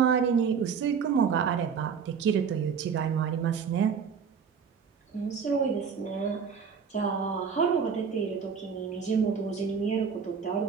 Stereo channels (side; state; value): left; quieter; 6.5 dB